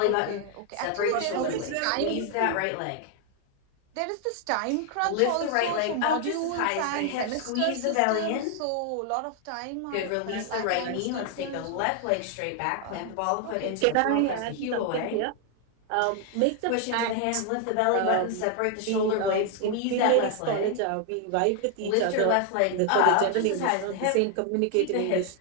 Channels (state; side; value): different; both; correlation 0.00